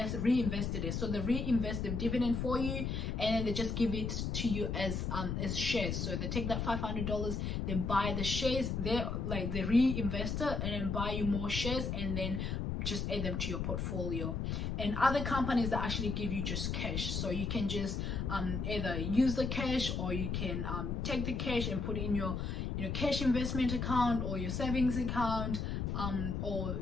reinvested it. So they reinvest the dividend for you, and then they just give it to you as shares. So they take that $500, they buy the shares, they reinvest it and then buy you more shares, and then just add them to your portfolio. And other companies that actually give you just cash, so you can just either use the cash, or you can take the cash and put it in your cash investment account or your savings account, or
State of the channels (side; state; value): left; noise; rumble, 1 dB below the sound